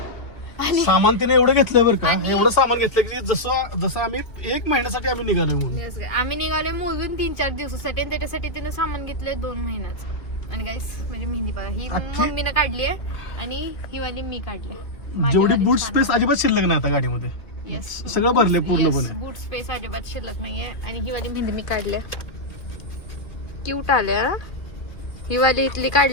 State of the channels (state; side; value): late; right; 2.2 ms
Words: सामान तिने एवढं घेतलं बरं का, आणि- एवढं सामान घेतलं की जसं आम्ही 1 महिन्यासाठी आम्ही निघालो म्हणून. Yes, guys. आम्ही निघालोय मोजून 3-4 दिवसासाठी आणि त्याच्यासाठी तिने सामान घेतलंय 2 महिन्याचं. आणि गाईस म्हणजे मेहंदी बघा, ही अख्खी- मम्मीनं काढली आहे आणि ही वाली मी काढली. जेवढी बूट स्पेस अजिबात शिल्लक नाही आता गाडीमध्ये. येस, सगळं भरले पूर्णपणे. बूट स्पेस अजिबात शिल्लक नाहीये. आणि ही वाली मेहंदी मी काढल्या, क्यूट आल्या. ही वाली इथली